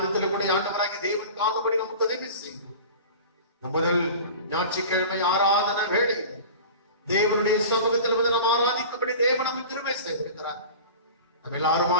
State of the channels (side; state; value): both; inverted; correlation -0.36